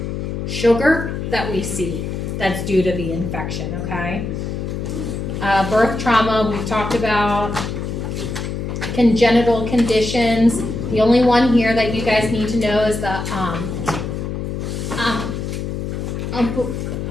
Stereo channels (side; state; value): left; noise; hum, 4 dB below the sound